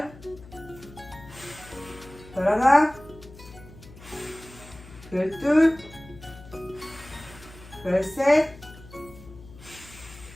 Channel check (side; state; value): left; noise; hum, 19 dB below the sound